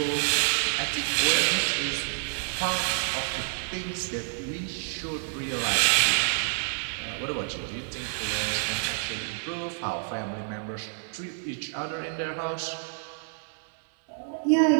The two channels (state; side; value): silent; left; digital silence